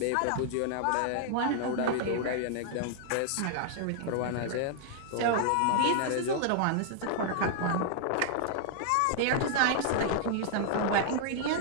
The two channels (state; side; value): different; both; correlation -0.01